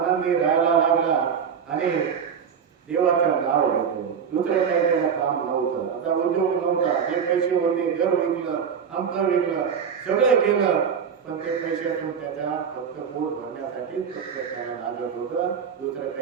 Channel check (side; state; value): left; quieter; 7.1 dB